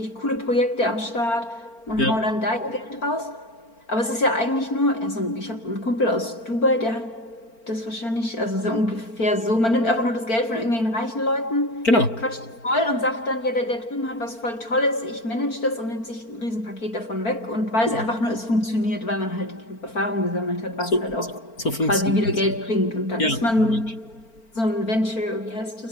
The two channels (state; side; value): late; right; 4.4 ms